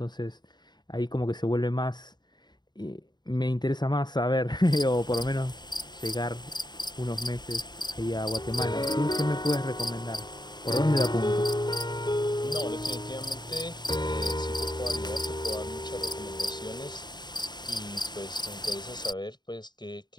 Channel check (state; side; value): late; right; 0.21 ms